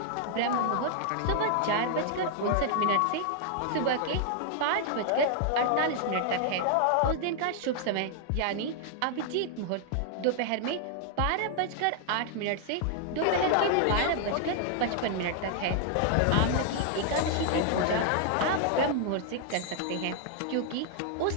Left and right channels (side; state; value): both; different; correlation 0.00